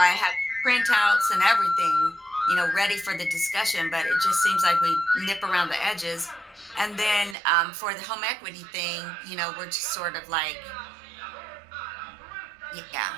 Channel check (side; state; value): left; drops out; at 7.4 s